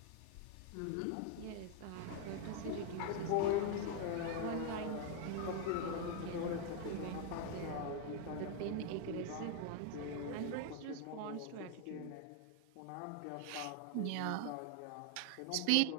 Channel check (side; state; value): both; different; correlation 0.00